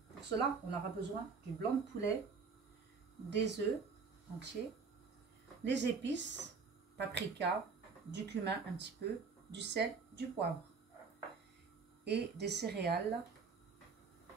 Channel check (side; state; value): left; quieter; 5.0 dB